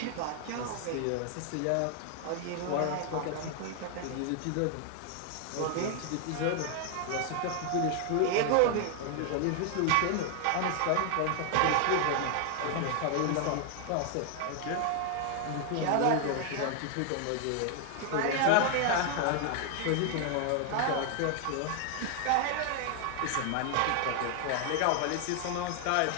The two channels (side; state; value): both; different; correlation 0.00